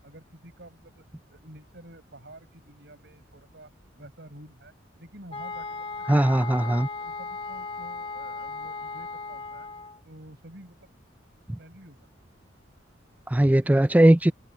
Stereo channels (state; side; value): normal; both; correlation 0.93